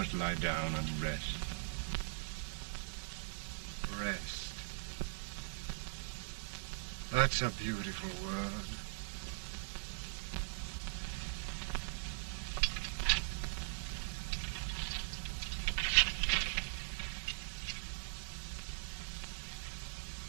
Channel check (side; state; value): left; silent; 50 dB below the other